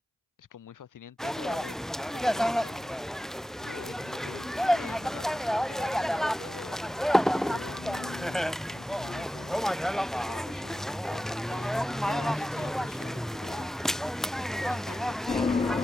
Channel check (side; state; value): both; normal; correlation 0.94